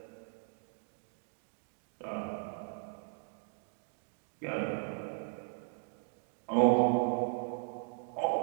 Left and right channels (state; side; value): silent; left; digital silence